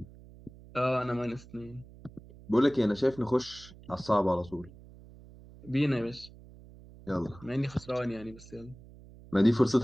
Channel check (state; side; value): noise; right; hum, 20 dB below the sound